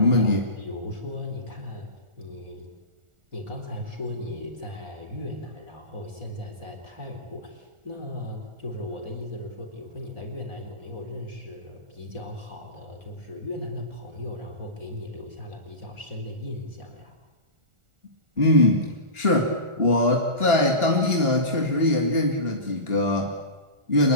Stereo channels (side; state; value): left; late; 1.4 ms